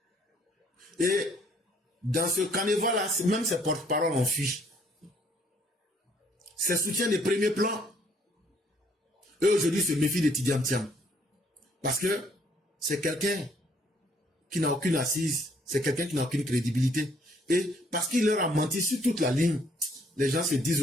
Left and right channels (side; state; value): both; normal; correlation 0.64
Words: Et dans ce carnaval-là, même ses porte-paroles en fuient. Ses soutiens de premier plan, eux aujourd'hui se méfient de Tidiane Thiam. Parce que c'est quelqu'un qui n'a aucune assise, c'est quelqu'un qui n'a aucune crédibilité. Et parce qu'il leur a menti sur toute la ligne, les gens se disent